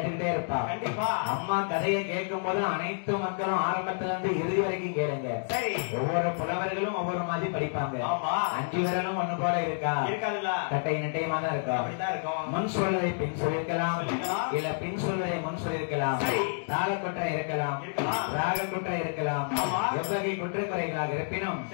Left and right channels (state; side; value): silent; right; digital silence